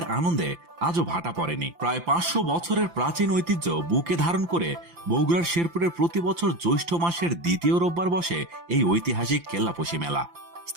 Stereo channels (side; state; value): left; late; 5.8 ms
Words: আনন্দে আজও ভাটা পড়েনি। প্রায় 500 বছরের প্রাচীন ঐতিহ্য বুকে ধারণ করে বগুড়ার শেরপুরের প্রতি বছর জ্যৈষ্ঠ মাসের দ্বিতীয় রোববার বসে এই ঐতিহাসিক কেল্লাপোশী মেলা।